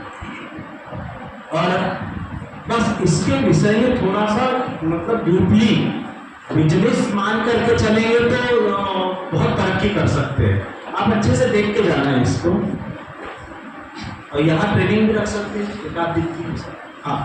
और बस इसके विषय में थोड़ा सा मतलब डीपली बिजनेस मान करके चलेंगे तो बहुत तरक्की कर सकते हैं। आप अच्छे से देख के जाना है इसको, और यहाँ ट्रेनिंग भी रख सकते हैं एक आध दिन की।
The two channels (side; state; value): both; identical; correlation 1.00